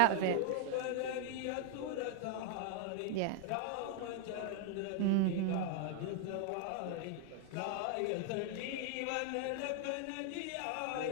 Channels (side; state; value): both; different; correlation 0.00